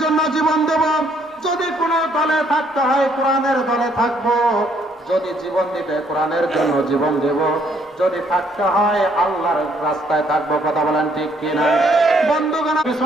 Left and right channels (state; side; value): normal; both; correlation 0.67